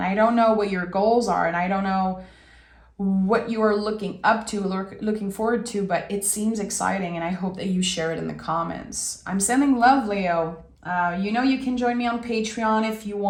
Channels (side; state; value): both; identical; correlation 1.00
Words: I don't know what your goals are, and I don't know what you are looking up to, looking forward to, but it seems exciting, and I hope that you share it in the comments. I'm sending love, Leo. You can join me on Patreon if you